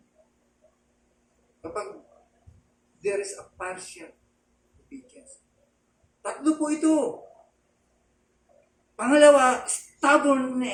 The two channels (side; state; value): both; identical; correlation 1.00